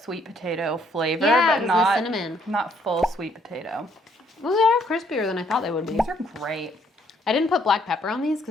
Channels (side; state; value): both; normal; correlation 0.68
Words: potato flavor, Yeah, but not cinnamon. Not full sweet potato. Well, they are crispier than I thought they would be. These are great. I didn't put black pepper on these